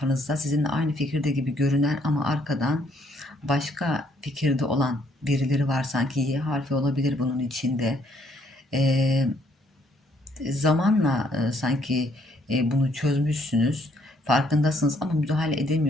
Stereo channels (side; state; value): both; normal; correlation 0.68